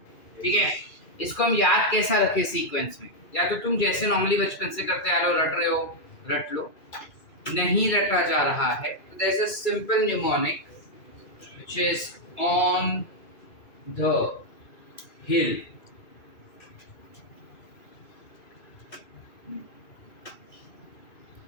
ठीक है? इसको हम याद कैसा रखें सीक्वेंस में? या तो तुम जैसे नॉर्मली बचपन से करते आ रहे हो, रट रहे हो, रट लो। नहीं रटा जा रहा है तो there is a simple mnemonic which is on the hill।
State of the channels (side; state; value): right; late; 2.3 ms